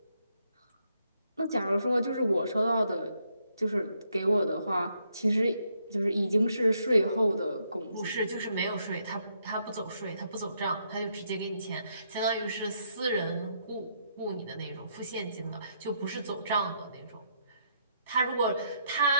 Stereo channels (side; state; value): both; inverted; correlation -0.75